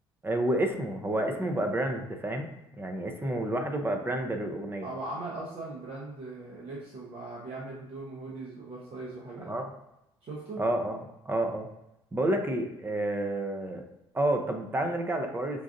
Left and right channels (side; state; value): both; normal; correlation 0.70